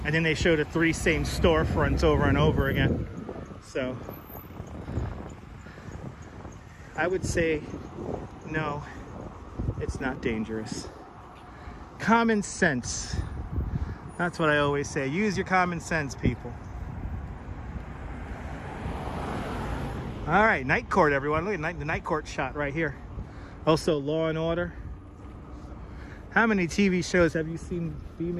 And then they showed the 3 same storefronts over and over again. So I would say, no, it's not dangerous. Common sense. That's what I always say. Use your common sense, people. All right, night court, everyone. Look at the night court shot right here. Also, Law and Order. How many TV shows have you seen be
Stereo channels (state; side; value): identical; both; correlation 1.00